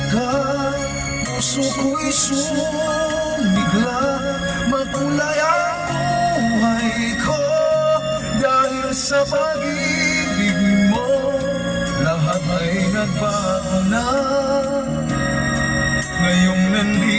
ka, puso ko'y sumigla. Makulay ang buhay ko dahil sa pag-ibig mo, lahat ay nagbago na. Ngayong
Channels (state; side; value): identical; both; correlation 1.00